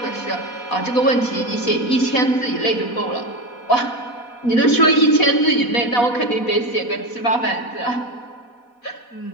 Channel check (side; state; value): right; late; 4.1 ms